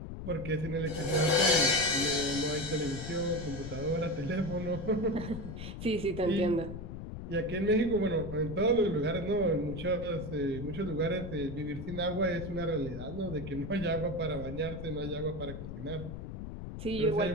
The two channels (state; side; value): noise; left; rumble, 8 dB below the sound